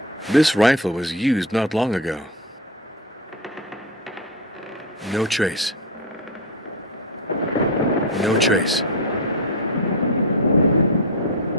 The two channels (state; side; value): normal; both; correlation 0.16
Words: This rifle was used not long ago. No trace. No trace.